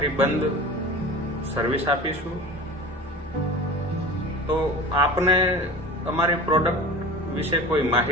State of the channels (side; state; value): both; normal; correlation 0.36